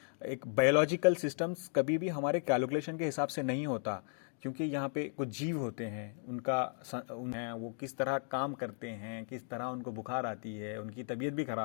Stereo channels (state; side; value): silent; right; 54 dB below the other